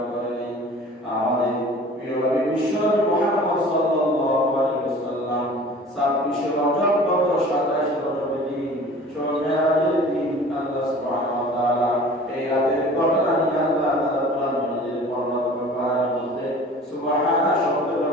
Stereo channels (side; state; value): both; normal; correlation 0.44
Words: করেন। আমাদের প্রিয় নবী বিশ্বনবী মুহাম্মদ সাল্লাল্লাহু আলাইহি ওয়াসাল্লাম 26 রজব গত 27 রজবের দিন মেরাজের দিন আল্লাহ সুবহানাহু ওয়া তাআলা এই রাতের ঘটনা নিয়ে আল্লাহ তাআলা কোরআন মাজিদের বর্ণনা করার মধ্যে সুবহানাহু শব্দ